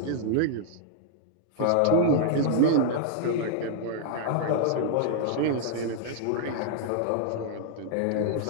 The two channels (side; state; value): both; different; correlation -0.02